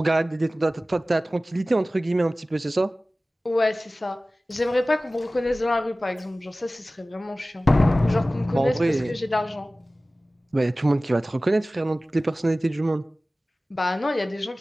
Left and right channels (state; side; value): normal; both; correlation 0.97